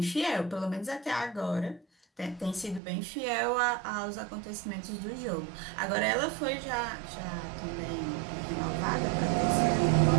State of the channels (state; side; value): drops out; left; at 2.8 s